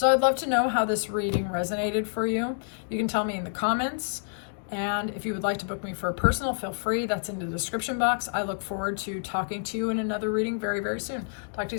I'd love to know how this reading resonated for you. You can tell me in the comments. And if you would like to book me for a personal, feel free. That's in the description box. I look forward to talking to you in another reading very, very soon. Talk to you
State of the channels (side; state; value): right; silent; digital silence